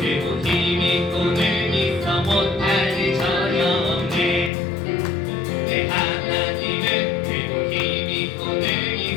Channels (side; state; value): right; drops out; at 4.5 s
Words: 힘이 꿈을 있어 못할 일 전혀 없네 내 하나님은 그리고 힘이 꿈을